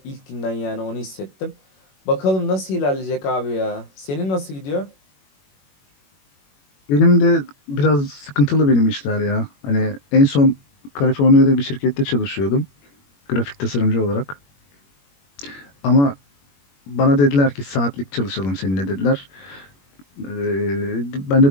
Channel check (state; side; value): late; right; 21 ms